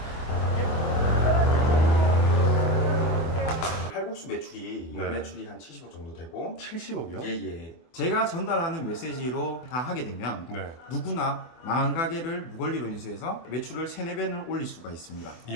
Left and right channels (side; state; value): right; late; 24 ms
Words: 칼국수 매출이 네. 매출이 한 70억 정도 되고 70억이요? 예예. 제가 전달하는 메시지로 다 하게 되면 네. 누구나 망한 가게를 무권리로 인수해서 매출을 3, 4배는 올릴 수가 있습니다. 이